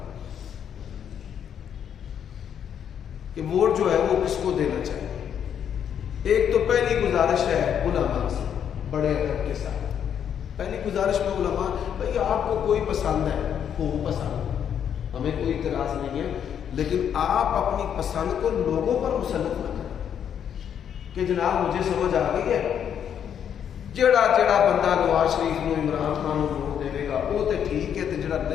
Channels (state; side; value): quieter; right; 8.7 dB